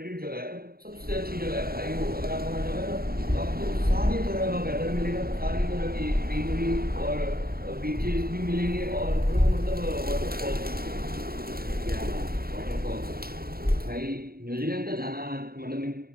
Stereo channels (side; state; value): left; late; 0.44 ms